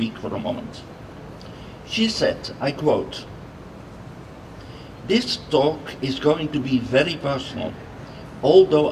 for a moment. She said, I quote, "This talk is going to be very personal, although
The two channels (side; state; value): both; identical; correlation 1.00